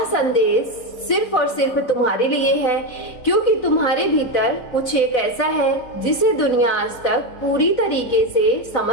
संदेश सिर्फ और सिर्फ तुम्हारे लिए है, क्योंकि तुम्हारे भीतर कुछ एक ऐसा है जिसे दुनिया आज तक पूरी तरीके से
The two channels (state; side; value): late; right; 4.0 ms